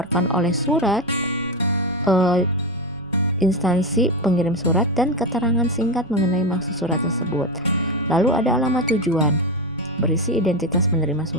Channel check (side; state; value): left; noise; rumble, 29 dB below the sound